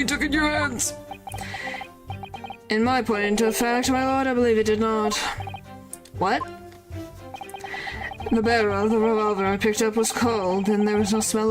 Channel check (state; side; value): identical; both; correlation 1.00